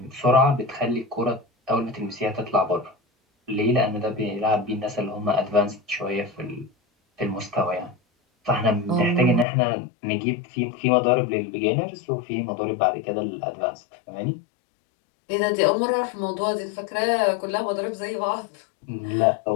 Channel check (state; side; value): drops out; right; at 9.5 s